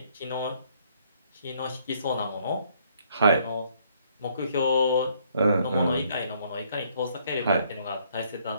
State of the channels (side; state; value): both; inverted; correlation -0.67